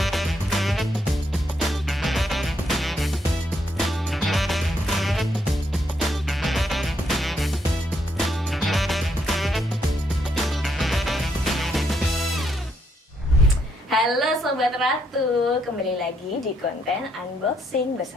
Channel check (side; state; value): both; normal; correlation 0.75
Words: Halo Sobat Ratu, kembali lagi di konten unboxing